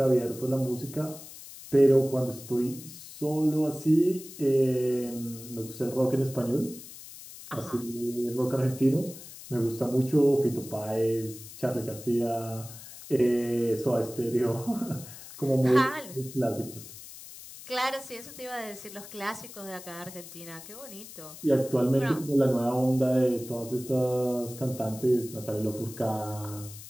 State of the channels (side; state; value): left; noise; hiss, 15 dB below the sound